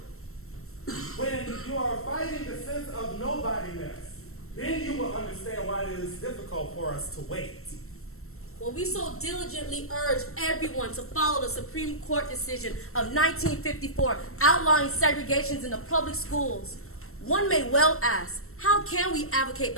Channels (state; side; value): late; right; 0.63 ms